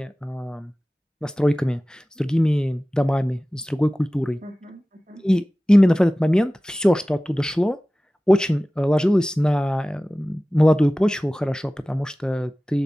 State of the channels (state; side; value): normal; both; correlation 0.97